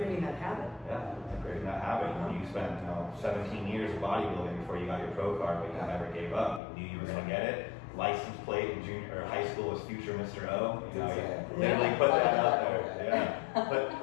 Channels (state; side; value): drops out; right; at 6.6 s